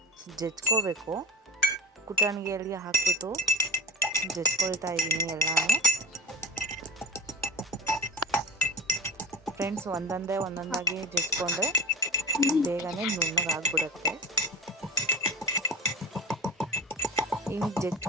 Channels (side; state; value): both; normal; correlation 0.31